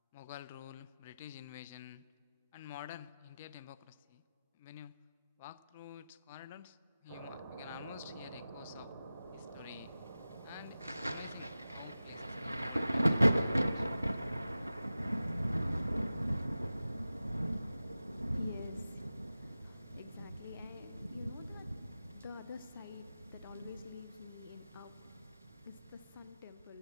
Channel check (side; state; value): both; inverted; correlation -0.95